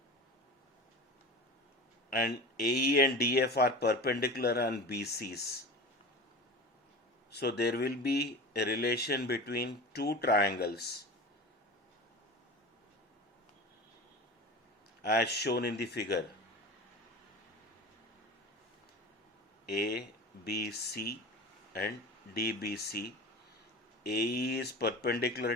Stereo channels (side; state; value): both; normal; correlation 0.33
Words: and AE and DF are perpendicular on BCs. So there will be a relation between two triangles as shown in the figure. ABC and DBC. AE is perpendicular